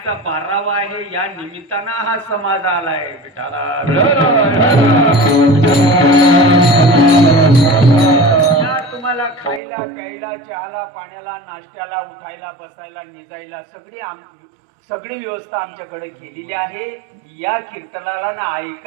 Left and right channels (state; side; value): drops out; left; at 9.6 s